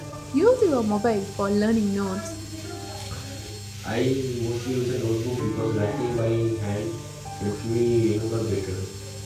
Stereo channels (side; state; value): both; identical; correlation 1.00